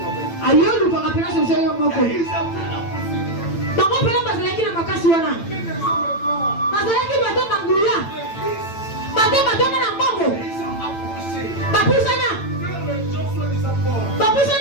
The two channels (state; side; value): late; right; 8.9 ms